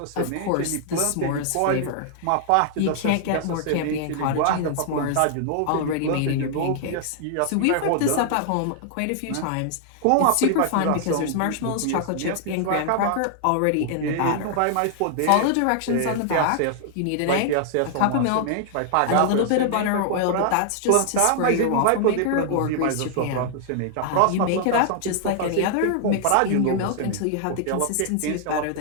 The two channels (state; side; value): different; both; correlation 0.00